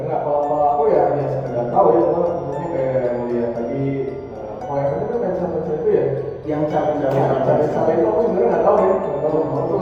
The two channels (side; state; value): both; identical; correlation 1.00